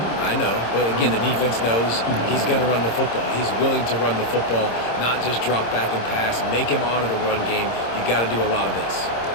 I know, but again, the defense knows he's going to run the football. He's willing to run the football, not just drop back and pass, make him honor the run game. You got to do a lot of this.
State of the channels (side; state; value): right; late; 26 ms